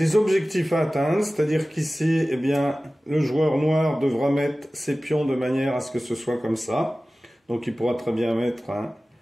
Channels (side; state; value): both; normal; correlation 0.97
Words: objectifs à atteindre, c'est-à-dire qu'ici, eh bien, le joueur noir devra mettre ses pions de manière à ce que ce soit comme ça. Donc il pourra très bien mettre